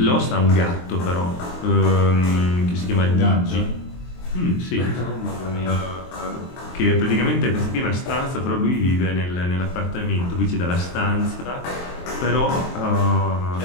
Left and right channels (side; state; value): right; late; 23 ms